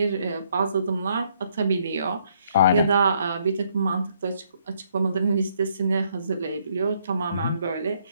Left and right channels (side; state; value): both; inverted; correlation -0.70